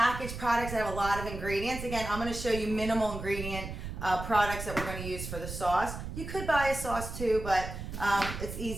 products that have a lot of ingredients. Again, I'm going to show you minimal ingredient products that we're going to use for the sauce. You could buy a sauce too, but it's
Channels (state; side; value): noise; right; rumble, 8 dB below the sound